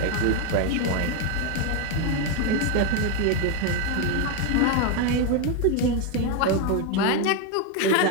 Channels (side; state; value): both; different; correlation 0.01